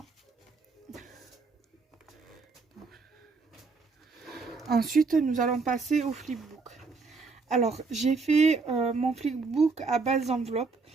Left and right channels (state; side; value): quieter; left; 4.3 dB